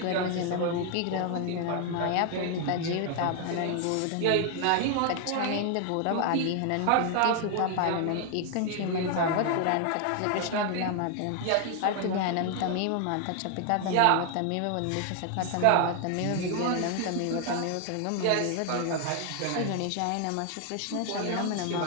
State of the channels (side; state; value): both; different; correlation 0.00